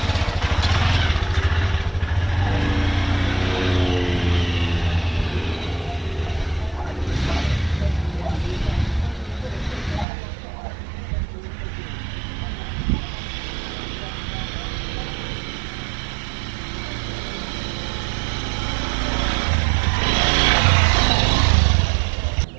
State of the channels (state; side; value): drops out; left; at 10.1 s